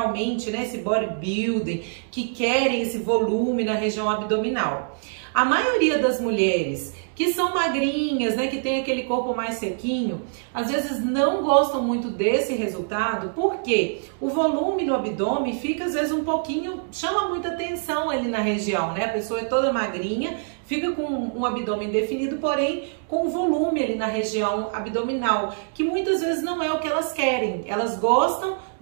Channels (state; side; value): silent; left; digital silence